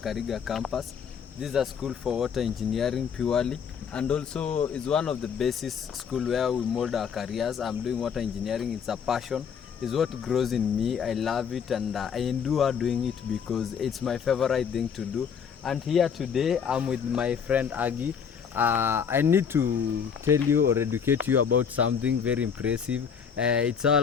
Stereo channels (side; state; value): right; quieter; 7.1 dB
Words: campus. This is a school for water engineering purely, and also is one of the basis school where we mold our careers. I'm doing water engineering. It's a passion. It's what grows in me. I love it, and I endure doing it because it's my favorite thing to do. And here today, I'm with my friend Aggie. I need to tell you or educate you about something very impressive. It's